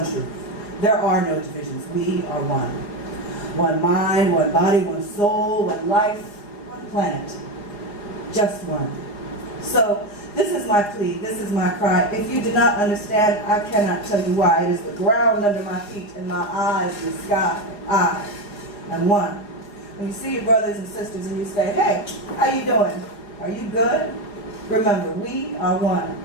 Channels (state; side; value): late; right; 4.9 ms